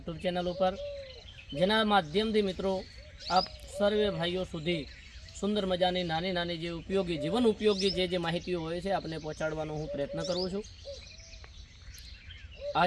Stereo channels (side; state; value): both; identical; correlation 1.00